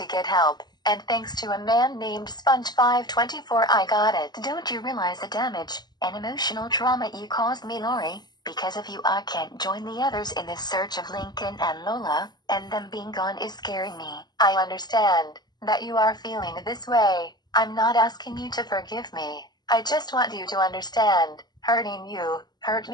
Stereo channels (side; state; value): right; late; 0.20 ms